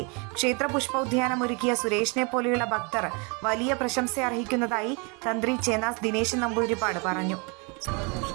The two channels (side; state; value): left; quieter; 31.9 dB